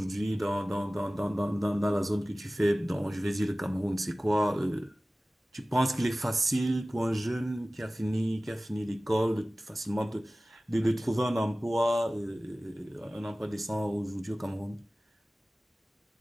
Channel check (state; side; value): normal; both; correlation 0.97